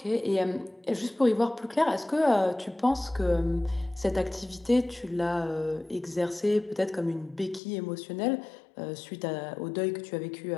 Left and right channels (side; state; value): right; drops out; at 7.6 s